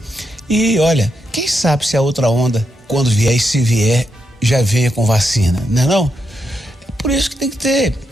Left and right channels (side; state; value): both; normal; correlation 0.82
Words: E olha, quem sabe se a outra onda, quando vier e se vier, já venha com vacina, não é não? É por isso que tem